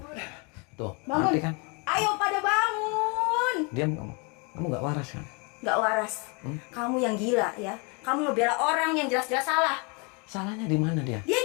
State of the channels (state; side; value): quieter; right; 32.0 dB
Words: Tuh, Bangun. mati kan? Ayo pada bangun! Diam kamu. Kamu gak waras kan? Gak waras. Kamu yang gila ya. Kamu ngebela orang yang jelas-jelas salah. Salahnya di mana dia? Dia